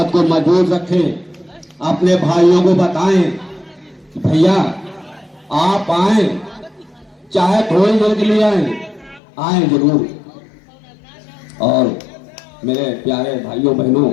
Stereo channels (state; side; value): drops out; right; at 9.2 s